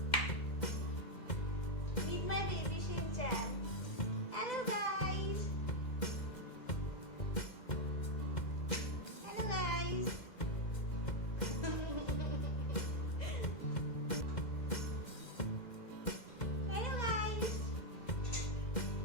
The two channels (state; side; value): late; right; 2.1 ms